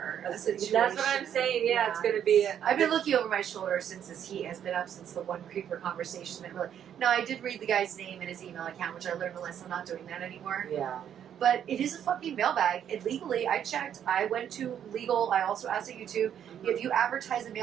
A situation. That's what I'm saying. Yeah, it's going to be. I've been looking over my shoulder since this heat has been up since the one Creeper Conversation. That really. No, I did read the guy's name and his email account, which I learned a lesson. I'm not doing that anymore. Yeah. But it is a fucking mailbag. And legally, I checked. I went to legal. I also asked at YouTube. If you advertise a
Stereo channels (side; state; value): left; quieter; 9.4 dB